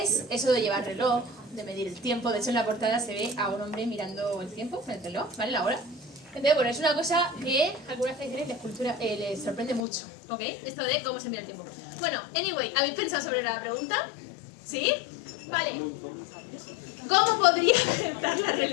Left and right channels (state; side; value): drops out; right; at 9.9 s